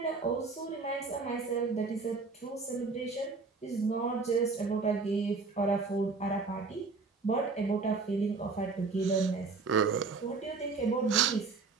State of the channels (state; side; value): quieter; left; 4.4 dB